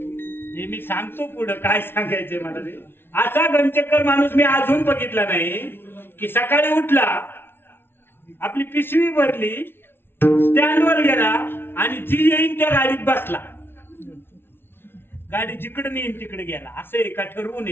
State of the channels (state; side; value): late; right; 0.11 ms